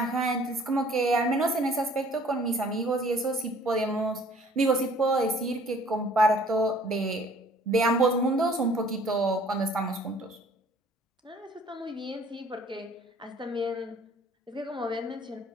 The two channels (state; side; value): normal; both; correlation 0.55